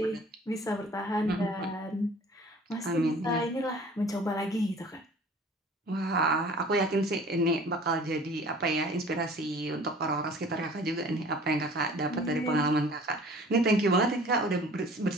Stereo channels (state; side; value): normal; both; correlation 0.48